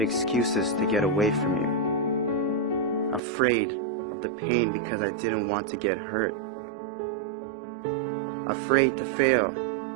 excuses to get away from you. Afraid of the pain because I didn't want to get hurt. Afraid to fail,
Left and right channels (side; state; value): left; drops out; at 3.2 s